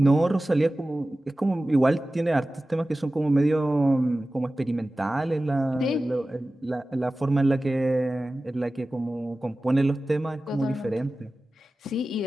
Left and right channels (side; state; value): both; normal; correlation 0.96